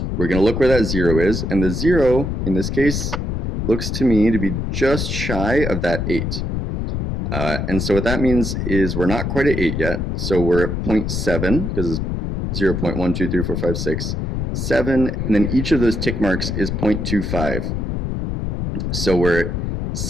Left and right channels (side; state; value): left; noise; rumble, 2 dB below the sound